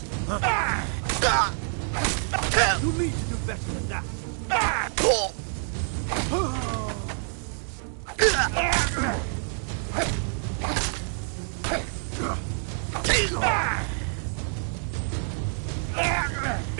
You need to do better than that.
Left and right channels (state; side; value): silent; left; 60 dB below the other